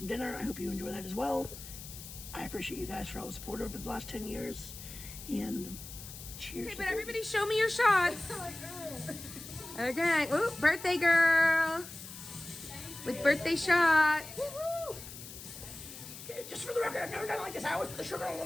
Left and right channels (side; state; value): left; noise; hiss, 13 dB below the sound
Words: dinner, I hope you enjoy that as well. I appreciate you guys for all the support over the last 10 years. And cheers. Okay, but everybody show me your shots. Okay. Ooh, birthday girl. With birthday shot. Just for the record, I've never done it like this. I always put the sugar on